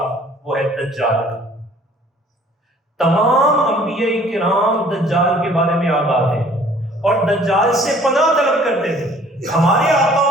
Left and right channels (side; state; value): both; normal; correlation 0.55